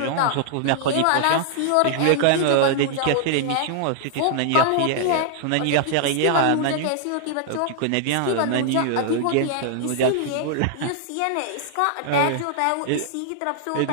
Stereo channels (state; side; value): different; both; correlation -0.01